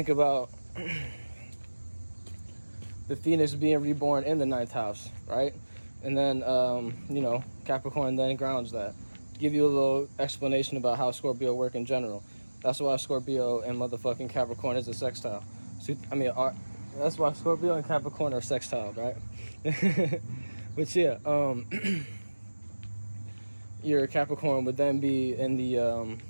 about the phoenix being reborn in the 9th house, right? And then, Capricorn then grounds that. Give you a little explanation about how Scorpio work in general. That's why Scorpio and motherfucking Capricorn is a sextile. So, that's why Scorpio and Capricorn are sextile, right? But yeah, your Capricorn would then be in the, I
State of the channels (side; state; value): both; inverted; correlation -1.00